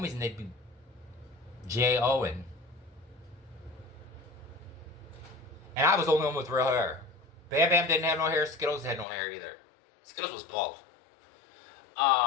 and they'd be J-O-ing. And I was the only one with real hair. Bam Bam didn't have no hair. Skittles had no hair either. Skittles was bald.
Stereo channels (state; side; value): drops out; right; at 9.1 s